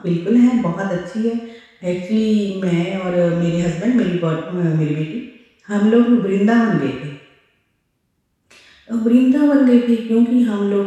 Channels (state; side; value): identical; both; correlation 1.00